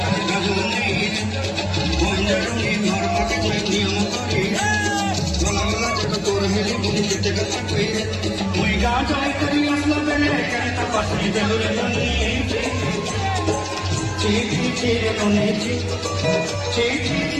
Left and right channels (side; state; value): both; identical; correlation 1.00